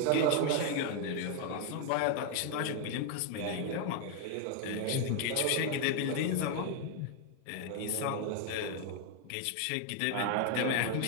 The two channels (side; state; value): both; different; correlation 0.01